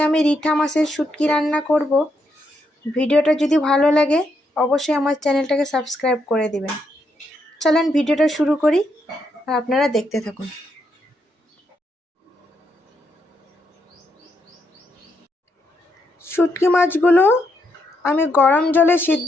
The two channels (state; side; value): normal; both; correlation 0.78